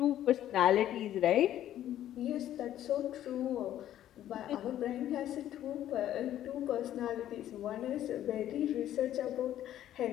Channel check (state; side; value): quieter; right; 12.0 dB